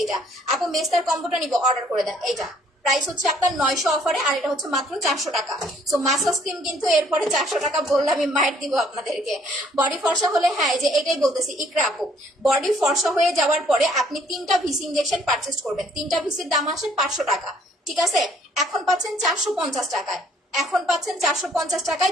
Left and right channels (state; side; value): normal; both; correlation 0.63